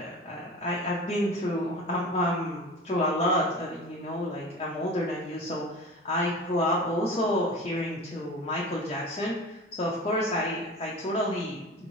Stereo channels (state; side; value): normal; both; correlation 0.35